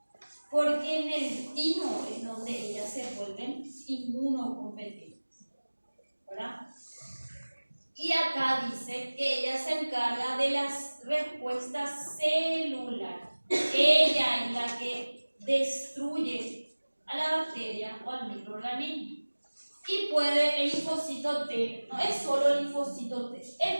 porque en el timo es donde ellas se vuelven inmunocompetentes, ¿verdad? Y acá dice que ella se encarga de las respuestas celulares. Ella es la que destruye a la bacteria o al microorganismo. Y puede, el linfocito T, no es solo el linfocito T,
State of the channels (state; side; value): inverted; both; correlation -1.00